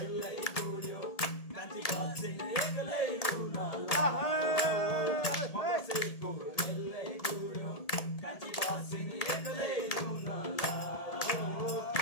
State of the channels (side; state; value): right; late; 1.8 ms